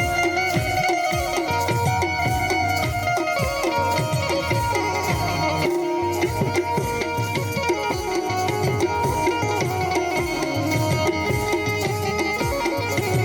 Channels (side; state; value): both; identical; correlation 1.00